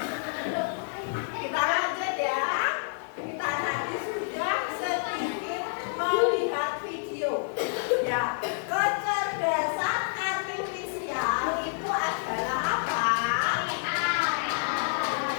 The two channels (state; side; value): silent; right; 59 dB below the other